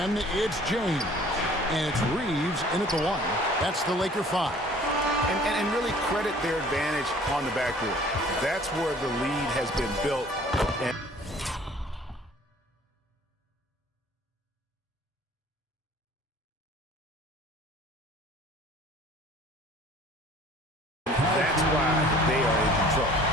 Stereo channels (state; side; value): normal; both; correlation 0.52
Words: it's James. And it's Reeves in at the 1. That's the Laker 5. And really credit their advantage on the backboard. That's where the lead has been built. And that's why they are in control.